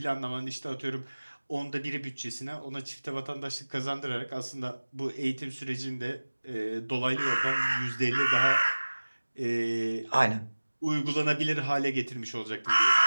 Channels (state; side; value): inverted; both; correlation -1.00